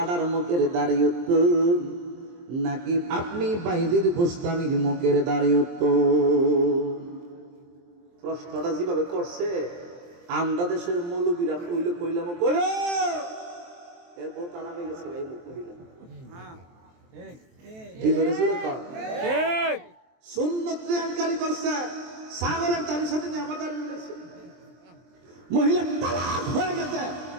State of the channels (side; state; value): left; late; 23 ms